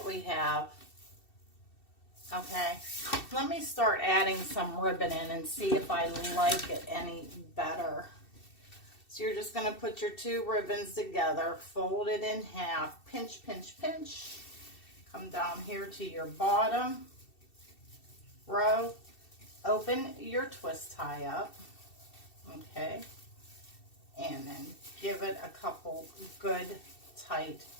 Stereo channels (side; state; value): right; late; 2.7 ms